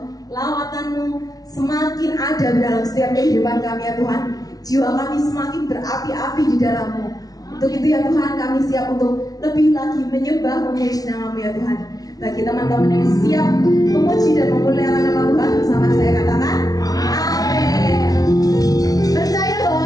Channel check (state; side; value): late; right; 0.18 ms